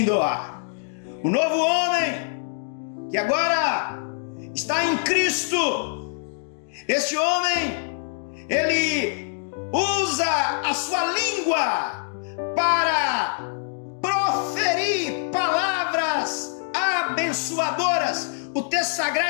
doar. O novo homem que agora está em Cristo, este homem, ele usa a sua língua para proferir palavras abençoadoras. O texto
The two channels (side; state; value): right; silent; digital silence